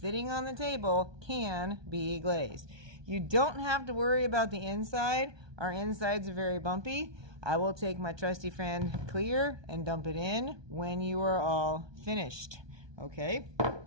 on the table can be glazed. You don't have to worry about the inside. Our insides are very bumpy. I will take my trusty friend clear and dump it in when you are all finished. Okay?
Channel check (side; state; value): left; late; 1.2 ms